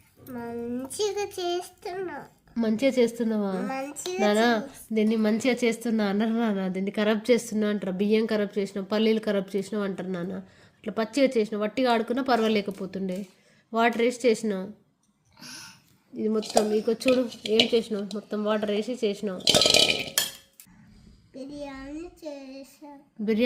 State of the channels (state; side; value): identical; both; correlation 1.00